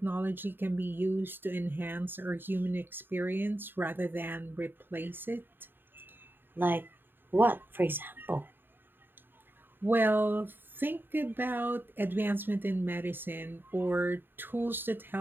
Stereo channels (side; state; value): left; late; 0.096 ms